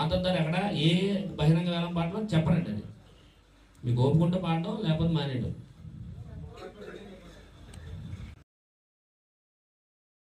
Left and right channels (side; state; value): both; identical; correlation 1.00